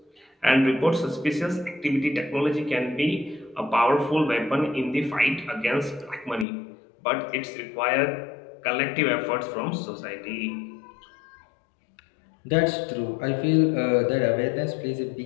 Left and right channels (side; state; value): right; drops out; at 6.5 s